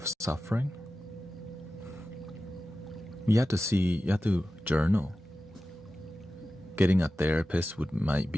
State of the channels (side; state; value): both; normal; correlation 0.94